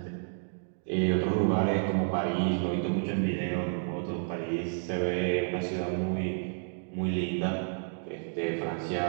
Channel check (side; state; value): left; silent; digital silence